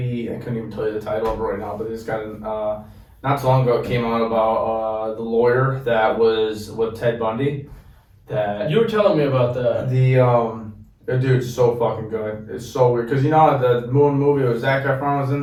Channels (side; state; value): both; identical; correlation 1.00